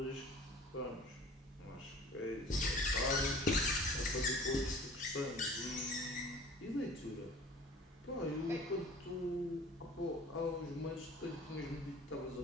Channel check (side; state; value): both; normal; correlation 0.46